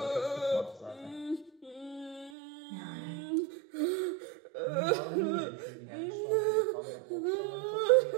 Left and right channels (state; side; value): drops out; left; at 2.3 s